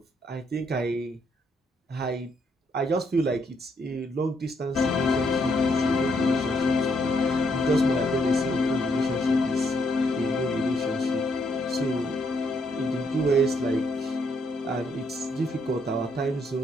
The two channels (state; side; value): normal; both; correlation 0.74